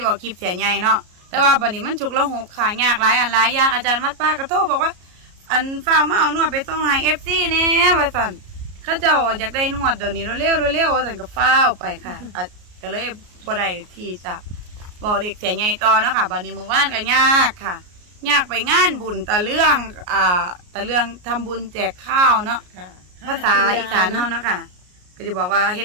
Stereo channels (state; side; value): late; left; 33 ms